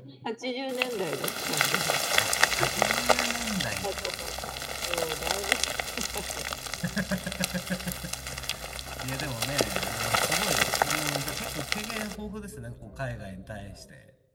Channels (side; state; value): both; identical; correlation 1.00